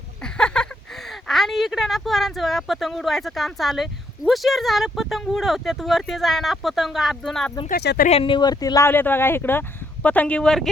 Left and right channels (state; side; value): normal; both; correlation 0.73